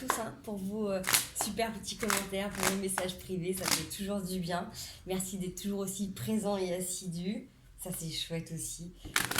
pour vos super petits commentaires, pour vos messages privés, ça fait toujours du bien. Merci d'être toujours aussi présents et assidus. Ça, c'est chouette aussi.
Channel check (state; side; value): identical; both; correlation 1.00